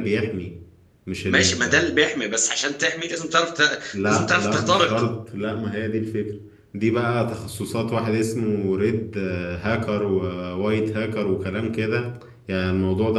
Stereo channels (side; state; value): both; identical; correlation 1.00